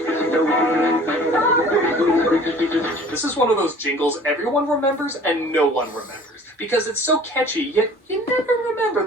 This is one of those jingles everyone remembers and no one remembers. Because it's so catchy, yet you never remember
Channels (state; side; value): normal; both; correlation 0.48